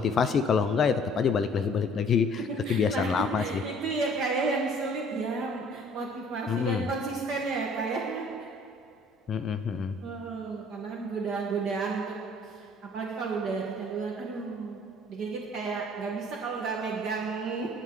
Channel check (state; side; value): normal; both; correlation 0.55